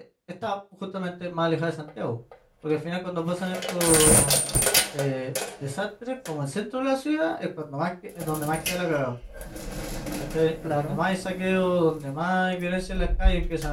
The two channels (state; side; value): identical; both; correlation 1.00